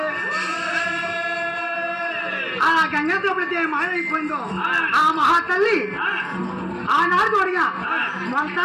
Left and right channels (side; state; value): both; identical; correlation 1.00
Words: ఆ గంగతో ఎప్పుడైతే మాయమైపోయిందో ఆ మహాతల్లి ఆనాడు చూడగా